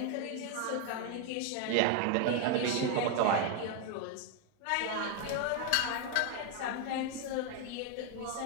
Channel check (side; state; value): both; different; correlation 0.01